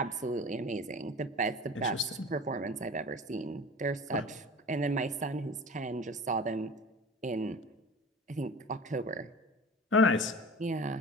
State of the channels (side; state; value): both; normal; correlation 0.37